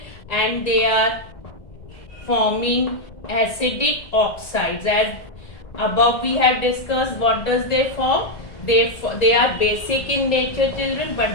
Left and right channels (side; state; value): right; late; 1.8 ms